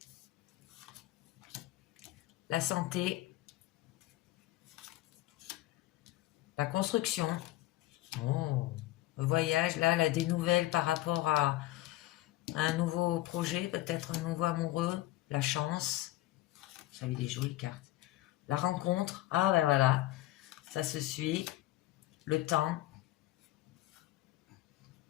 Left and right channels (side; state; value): right; quieter; 16.5 dB